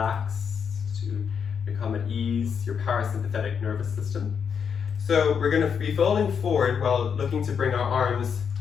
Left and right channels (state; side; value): quieter; right; 6.9 dB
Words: to become at ease, your parasympathetic nervous system. So we're going to be folding forward while looking to bring our arms